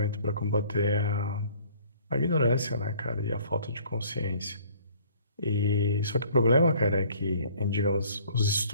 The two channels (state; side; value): inverted; both; correlation -0.56